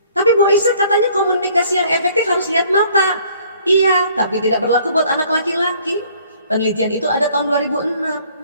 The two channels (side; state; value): both; inverted; correlation -0.58